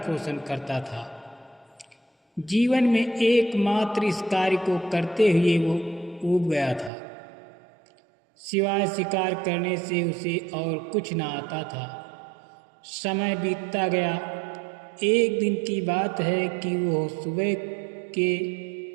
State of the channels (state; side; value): drops out; left; at 6.9 s